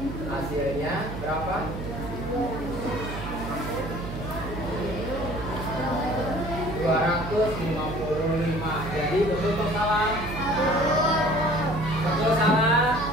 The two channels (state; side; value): noise; right; hum, 8 dB below the sound